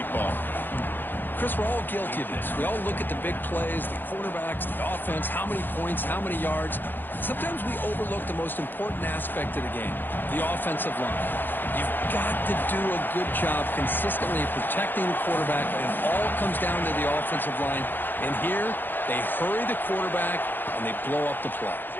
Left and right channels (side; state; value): right; late; 0.093 ms